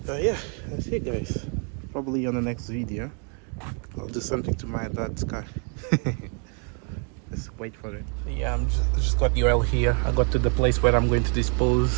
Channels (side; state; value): left; quieter; 39.8 dB